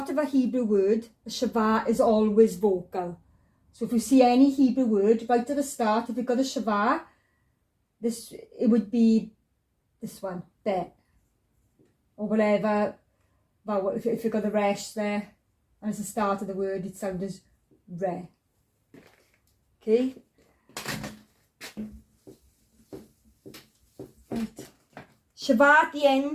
of a Hebrew word, the Shva is always vocal. So if you see any Hebrew word, right at the start, if you've got a Shva, it would be this one, be, or whatever vowel. If you've got the resh there, and it's the start of the word, it sounds as re. Okay. Right. Shva at the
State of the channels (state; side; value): identical; both; correlation 1.00